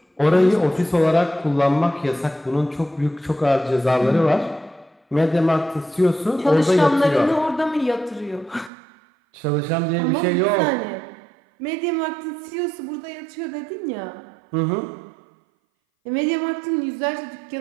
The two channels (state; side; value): drops out; left; at 8.7 s